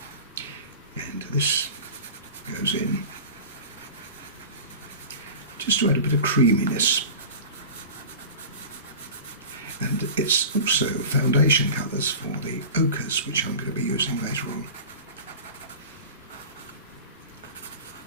and this goes in just to add a bit of creaminess. And it's also foundation colours for the ochres, which I'm going to be using later on.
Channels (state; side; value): inverted; both; correlation -0.35